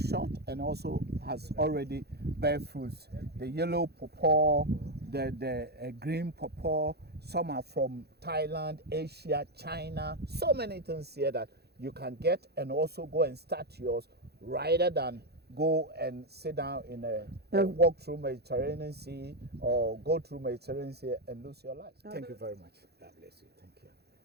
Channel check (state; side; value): late; left; 0.47 ms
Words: and also has already bear fruits. The yellow pawpaw, the green pawpaw, some are from Thailand, Asia, China, so many things here that you can get and also go and start yours rather than go and sit down in walk through Mediterranean Sea or go through Mediterranean Sea and lose your life. Thank you very much. God bless you. Thank